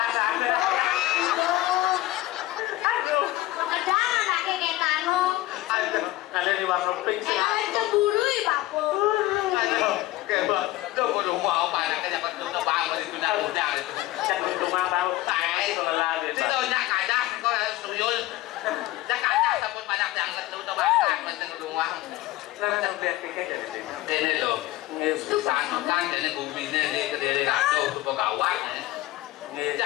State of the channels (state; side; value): quieter; right; 17.1 dB